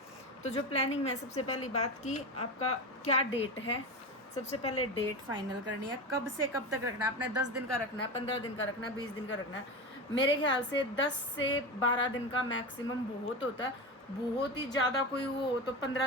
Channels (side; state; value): both; normal; correlation 0.23